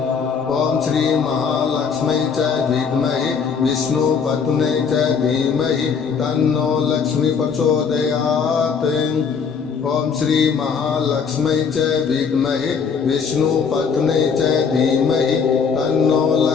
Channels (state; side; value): quieter; right; 6.1 dB